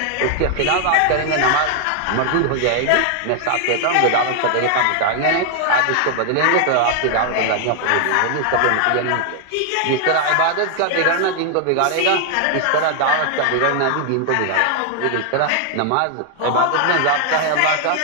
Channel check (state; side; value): different; both; correlation 0.00